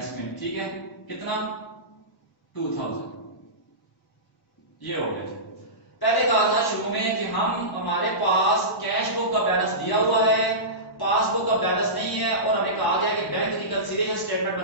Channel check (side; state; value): both; normal; correlation -0.20